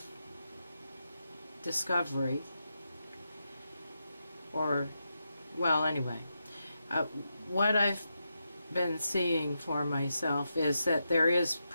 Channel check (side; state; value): both; inverted; correlation -0.86